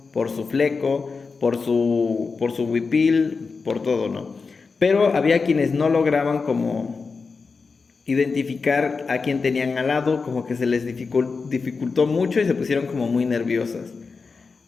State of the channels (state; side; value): quieter; right; 4.7 dB